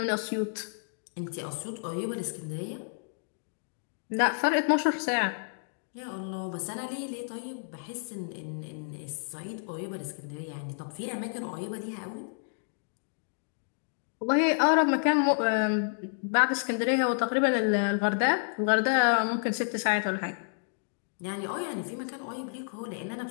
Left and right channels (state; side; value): silent; right; digital silence